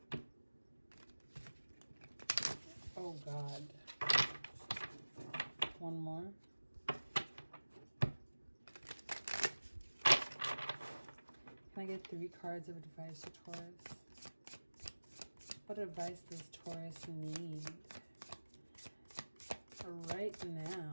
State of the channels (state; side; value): inverted; both; correlation -1.00